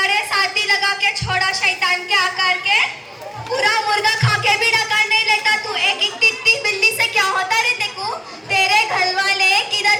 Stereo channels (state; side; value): identical; both; correlation 1.00